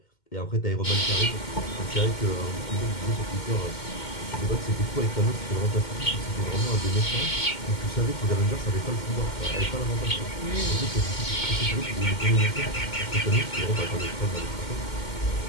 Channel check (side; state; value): right; late; 2.1 ms